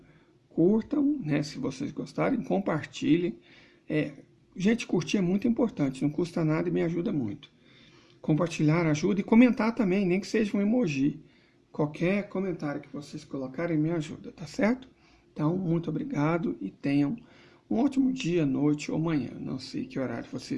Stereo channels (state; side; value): identical; both; correlation 1.00